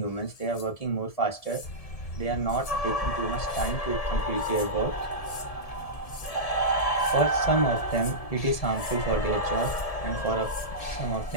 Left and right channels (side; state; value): right; late; 1.7 ms